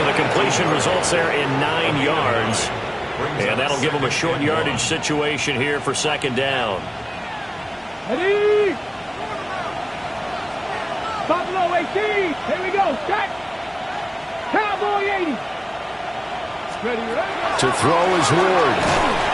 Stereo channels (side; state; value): both; identical; correlation 1.00